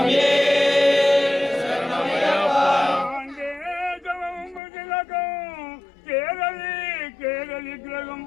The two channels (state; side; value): drops out; right; at 4.6 s